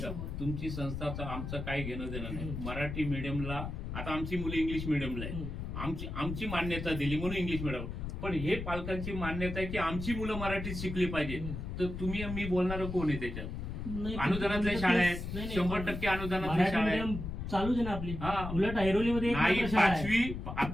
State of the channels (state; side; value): noise; left; rumble, 6 dB below the sound